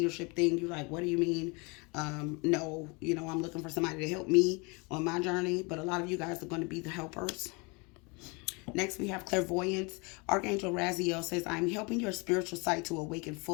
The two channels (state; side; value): quieter; right; 29.7 dB